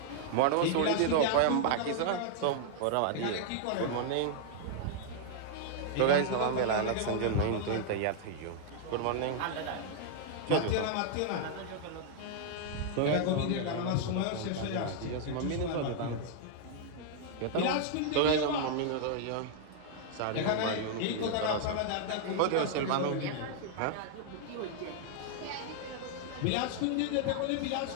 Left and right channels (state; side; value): different; both; correlation -0.01